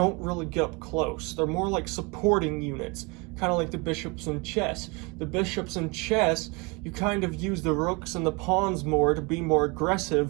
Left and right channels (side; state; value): left; quieter; 28.5 dB